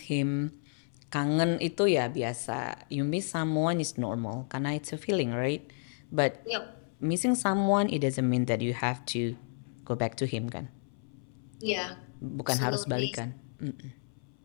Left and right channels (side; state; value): right; silent; 57 dB below the other